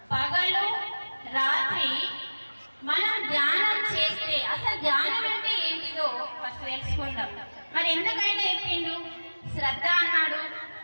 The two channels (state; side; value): inverted; both; correlation -1.00